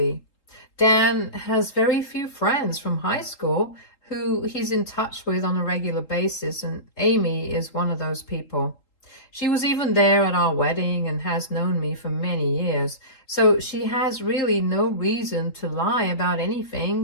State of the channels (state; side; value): late; right; 3.8 ms